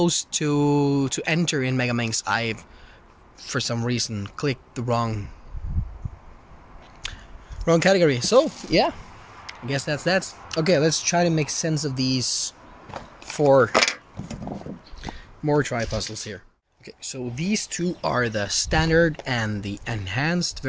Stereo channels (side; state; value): both; identical; correlation 1.00